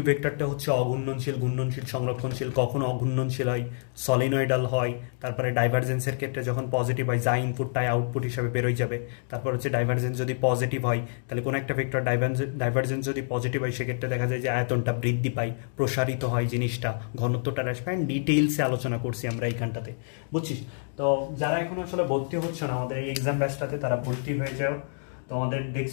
ভেক্টরটা হচ্ছে অঘূর্ণনশীল, ঘূর্ণনশীল, সংরক্ষণশীল। কখনো অঘূর্ণনশীল হয়, সলিনয়েডাল হয়। তারপরে ডাইভারজেন্সের ক্ষেত্রে যখন পজিটিভ হয়, যা ইনপুট তাই আউটপুট হিসাবে বেরোয় যাবে। তারপর হচ্ছে ডাইভারজেন্স যদি পজিটিভ হয়, তাহলে কোনো একটা ভেক্টর ডাইভারজেন্স যদি পজিটিভ হয়, সেক্ষেত্রে দেখা যায় যে আয়তনটা বৃদ্ধি পায়, প্রসারিত হয় জিনিসটা, ঘনত্বটা হ্রাস পায়। ডিটেইলসে আলোচনা করছি আমরা এইখানটাতে, বুঝছিস? তো যারা এখন আসলে ভর্তি হচ্ছে না আমাদের এই এক্সাম ব্যাচটাতে, তারা ভর্তি হয়ে যাও। তোমাদের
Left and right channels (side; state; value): right; silent; digital silence